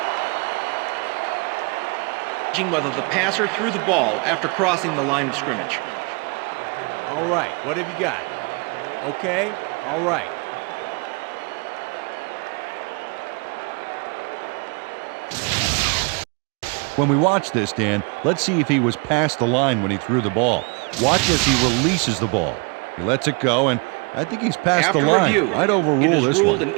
whether the passer threw the ball after crossing the line of scrimmage. All right, what have you got? Okay, all right. When we watch this, Dan, let's see if he was past the line when he threw the ball. Watch as he releases the ball. He lets it go, and I think he's past After the line. review, I'd overrule it is this ruled one. an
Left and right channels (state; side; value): quieter; left; 31.3 dB